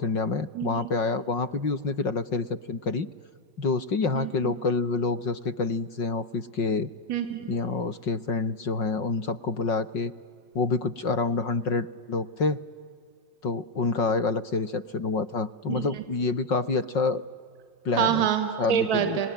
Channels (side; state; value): right; late; 5.5 ms